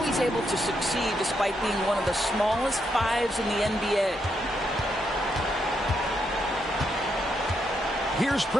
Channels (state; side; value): normal; both; correlation 0.79